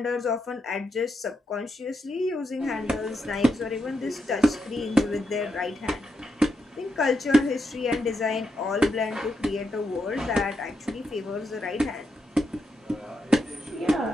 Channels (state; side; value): normal; both; correlation 0.83